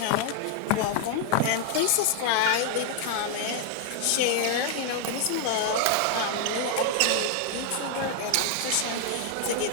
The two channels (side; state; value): both; different; correlation 0.00